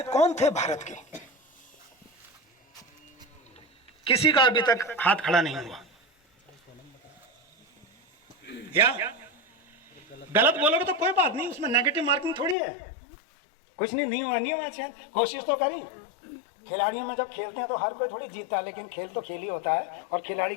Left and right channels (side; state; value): right; drops out; at 12.6 s